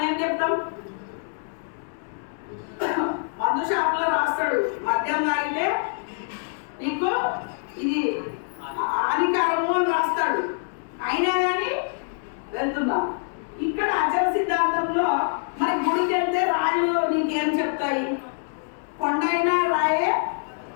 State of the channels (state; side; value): silent; right; digital silence